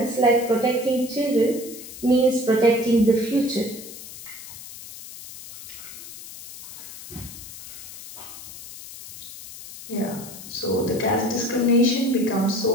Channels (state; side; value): noise; left; hiss, 14 dB below the sound